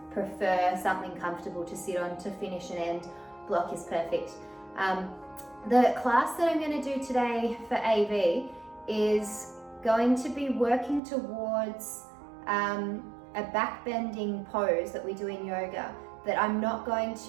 prefer something comfortable to sit on to finish and end, block is perfect. The class that I'm going to do today for AV is going to be working towards a back bending pose that we do in yoga that I'm not going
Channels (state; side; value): drops out; left; at 11.0 s